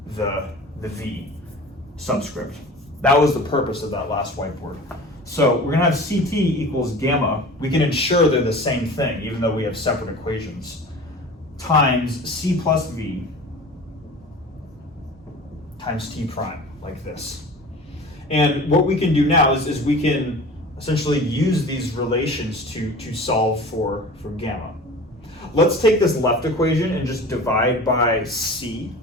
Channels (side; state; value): both; normal; correlation 0.39